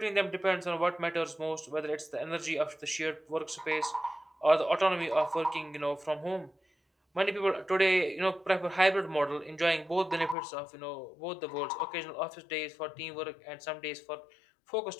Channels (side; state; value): right; drops out; at 10.4 s